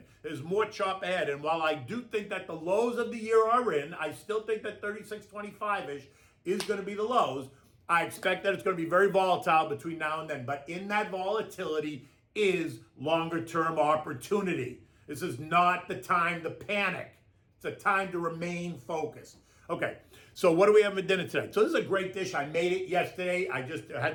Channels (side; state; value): both; identical; correlation 1.00